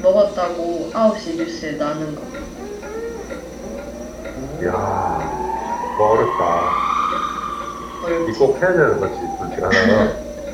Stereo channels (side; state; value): both; identical; correlation 1.00